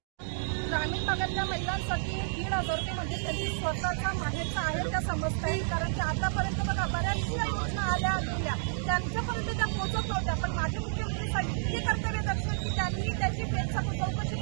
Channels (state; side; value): silent; left; digital silence